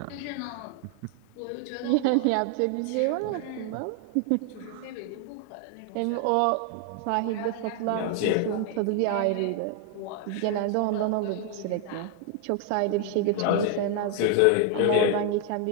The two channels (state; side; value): different; both; correlation 0.00